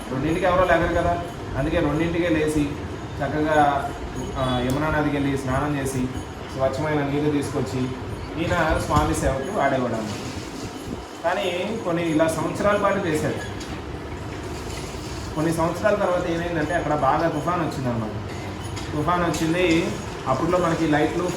2ంటికి ఎవరో లేగరు కదా, అందుకే 2ంటికే లేచి చక్కగా యమునా నదికి వెళ్ళి స్నానం చేసి స్వచ్ఛమైన నీరు తీసుకొచ్చి ఈయన స్వామి సేవకు వాడేవాడు అన్నమాట. కానీ కొన్ని ఇలా సంవత్సరాల పాటు చేశాడు. కొన్ని సంవత్సరాల తర్వాత ఏమైందంటే అక్కడ బాగా తుఫాన్ వచ్చిందన్నమాట. తుఫాన్ వచ్చింది. అప్పట్లో మనకి లైట్లు,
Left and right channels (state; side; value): identical; both; correlation 1.00